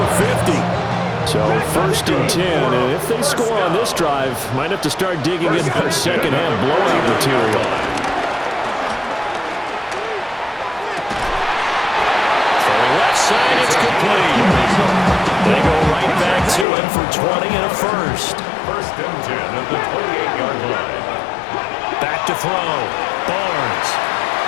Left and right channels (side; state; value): right; drops out; at 16.7 s